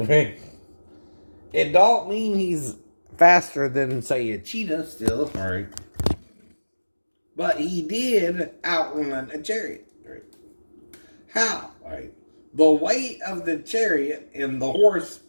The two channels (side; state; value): both; inverted; correlation -1.00